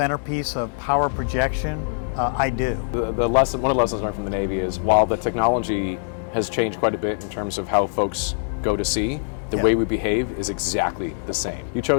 of power projection? I do. One of the lessons learned from the Navy is while the technology has changed quite a bit in terms of how folks go to sea, the way we behave is exactly the same. You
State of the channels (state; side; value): silent; right; digital silence